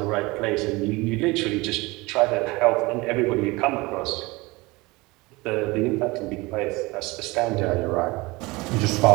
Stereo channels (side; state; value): left; quieter; 23.0 dB